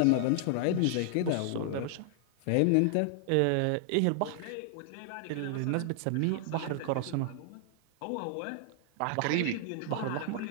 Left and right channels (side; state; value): both; different; correlation -0.01